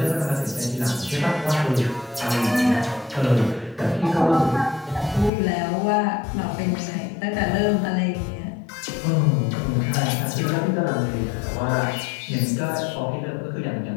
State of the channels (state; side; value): drops out; right; at 5.3 s